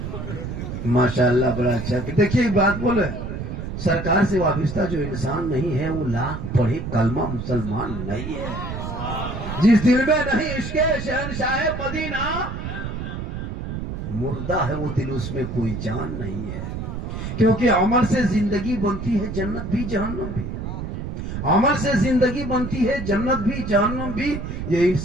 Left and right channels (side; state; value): right; noise; rumble, 6 dB below the sound